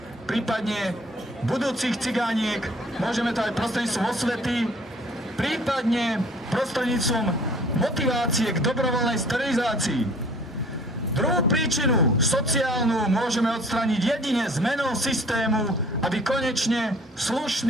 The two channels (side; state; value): both; normal; correlation 0.53